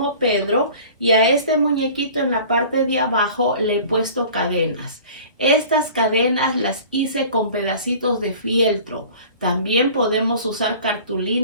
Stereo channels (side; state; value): both; inverted; correlation -0.44